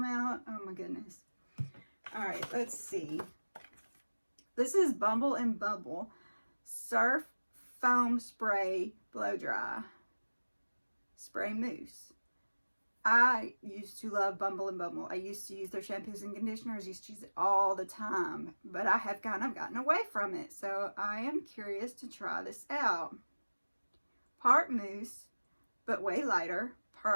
out? Oh my goodness. All right, let's see. This is Bumble Bumble Surf Foam Spray Blow Dry Spray Mousse. I used to love Bumble Bumble. I used to use their shampoos and conditioners. Used to use it all the time. But I have kind of gotten away from it. So I am curious to try this out. Part mousse, but way lighter.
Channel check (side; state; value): both; inverted; correlation -1.00